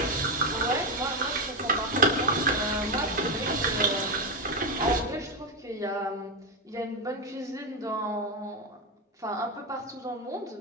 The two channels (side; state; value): both; normal; correlation 0.09